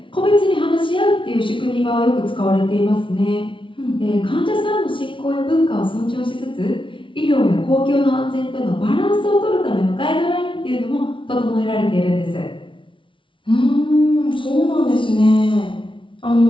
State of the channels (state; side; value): late; right; 0.25 ms